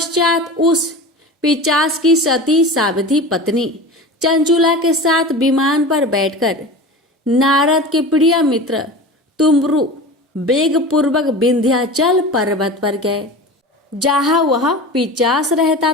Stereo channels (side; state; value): both; normal; correlation 0.32